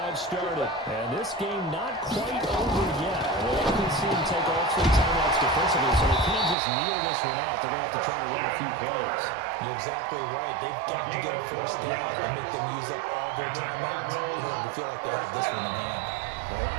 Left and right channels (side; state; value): left; drops out; at 6.6 s